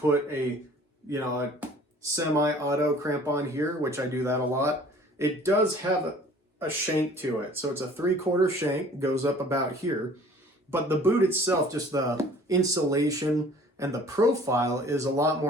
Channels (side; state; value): both; normal; correlation 0.51